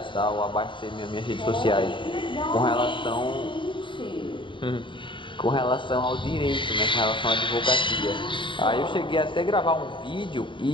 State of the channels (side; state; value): right; late; 0.24 ms